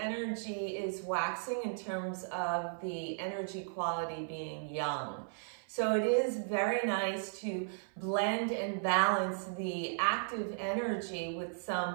is waxing in terms of the energy quality being yang. So it is very nice to blend and balance the active energy with some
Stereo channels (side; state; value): left; silent; 54 dB below the other